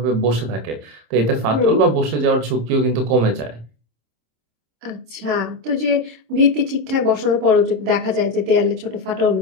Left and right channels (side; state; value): left; late; 26 ms